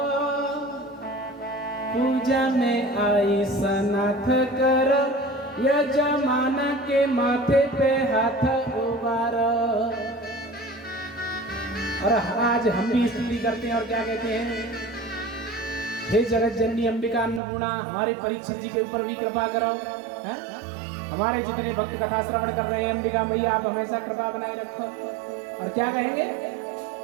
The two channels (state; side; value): drops out; left; at 17.4 s